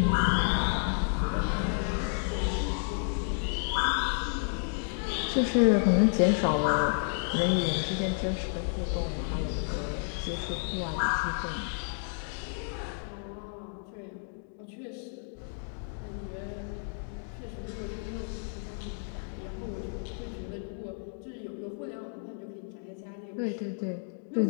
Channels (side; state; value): right; silent; 57 dB below the other